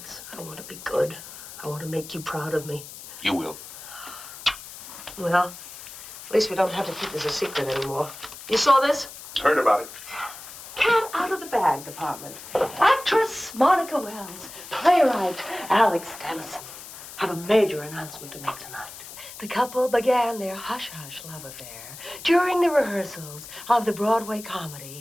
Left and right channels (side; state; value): left; noise; hiss, 14 dB below the sound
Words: I want to be good. I want to make you proud of me. You will. Well, at least we don't have to keep this a secret anymore. You saw this? Heard about it. Cat out of the bag department. Actress Monica Wells. Playwright Alex Dennison. have a major announcement to make tonight. The couple began their hush-hush love affair during the rehearsals of the Broadway